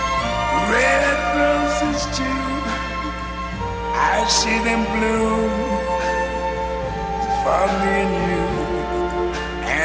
red roses too. I see them bloom for me and you,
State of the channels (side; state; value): both; identical; correlation 1.00